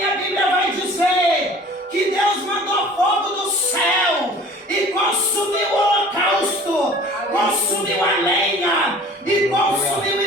Bíblia vai dizer que Deus mandou fogo do céu e consumiu o holocausto, consumiu a lenha e consumiu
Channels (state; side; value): normal; both; correlation 0.46